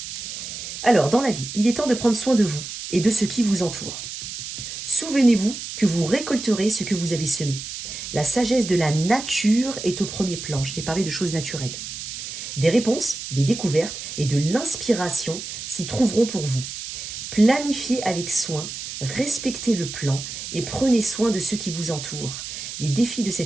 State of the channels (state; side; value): noise; right; hiss, 8 dB below the sound